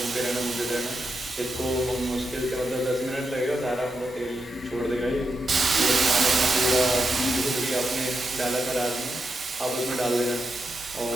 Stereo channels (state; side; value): normal; both; correlation 0.85